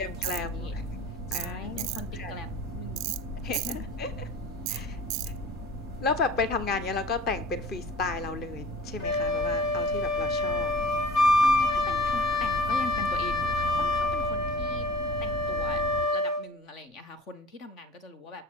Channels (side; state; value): both; normal; correlation 0.43